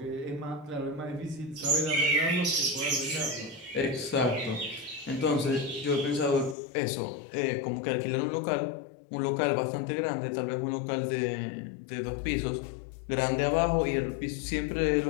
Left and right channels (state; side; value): drops out; right; at 6.6 s